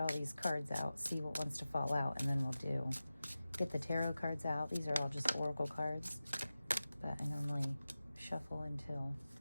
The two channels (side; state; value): both; inverted; correlation -0.95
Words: these cards out, see what wants to fall out, and then we'll get the tarot cards out. These are all just oracle cards. But I normally shuffle until